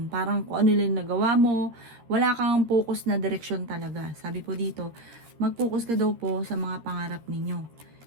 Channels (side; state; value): left; late; 13 ms